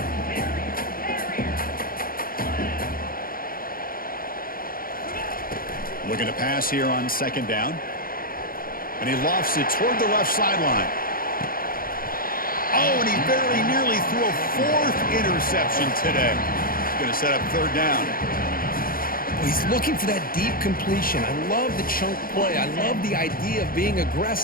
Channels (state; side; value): late; right; 0.42 ms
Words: Looking to pass here on 2nd down. And he lofts it toward the left sideline. Oh, and he very nearly threw a 4th interception today. He's going to set up 3rd down. Well, he's looking for that deep completion. I love the chunk play. I love the idea of being